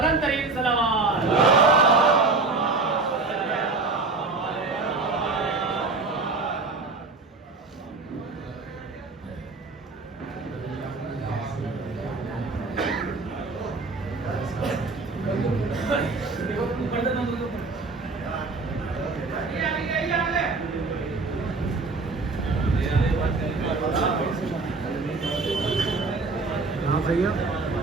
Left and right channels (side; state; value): left; quieter; 3.8 dB